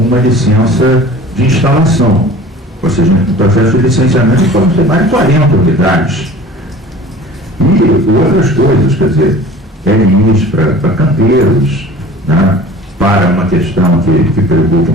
licença de instalação. Ou seja, no processo de licenciamento podem ser mais de 40 unidades. E outras coisas, quer dizer, LIs para canteiros, né, para uma questão que preocupa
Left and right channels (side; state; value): both; normal; correlation 0.43